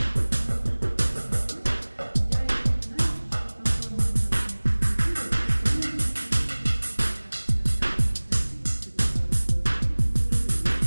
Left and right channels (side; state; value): both; inverted; correlation -1.00